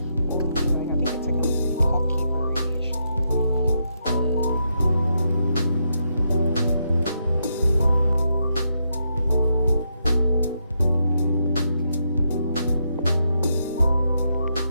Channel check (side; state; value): both; inverted; correlation -0.80